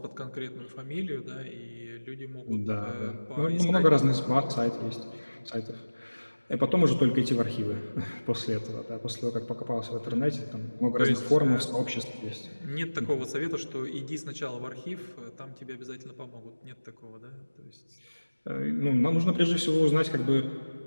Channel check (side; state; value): both; inverted; correlation -1.00